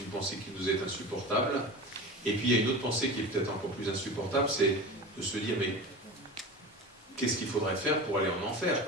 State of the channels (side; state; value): both; normal; correlation 0.31